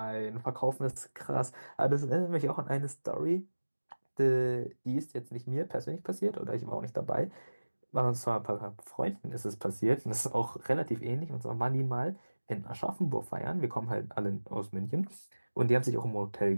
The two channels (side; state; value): both; inverted; correlation -1.00